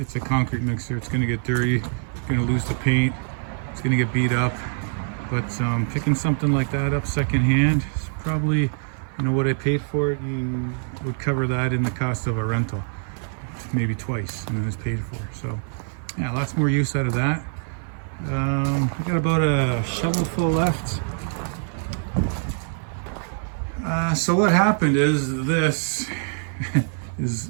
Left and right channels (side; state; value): left; silent; 57 dB below the other